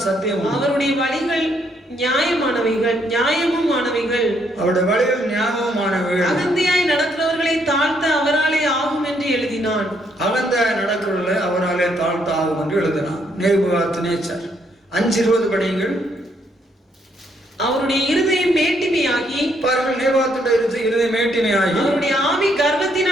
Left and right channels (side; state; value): both; normal; correlation 0.72